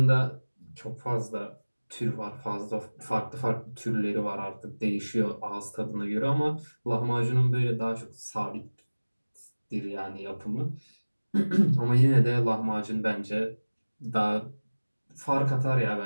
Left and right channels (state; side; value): inverted; both; correlation -1.00